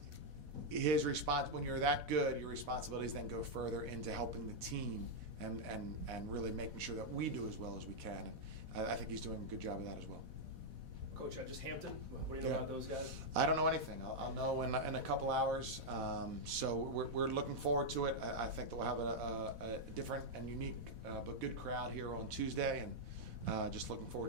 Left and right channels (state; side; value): late; left; 4.1 ms